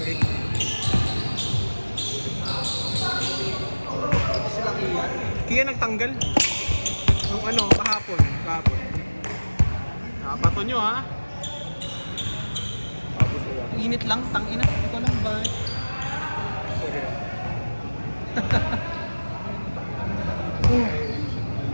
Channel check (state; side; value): inverted; both; correlation -1.00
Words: Kaya nagtanggal. Nung ano, kahapon. Bato nyo ha. Init lang, tangina. Ito lang ba?